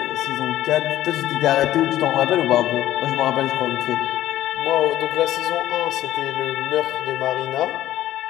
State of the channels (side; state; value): right; quieter; 13.6 dB